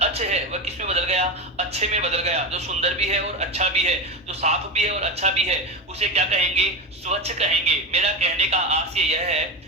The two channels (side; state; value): both; normal; correlation 0.19